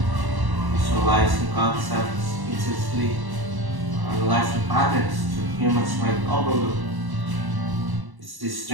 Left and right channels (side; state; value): left; late; 1.1 ms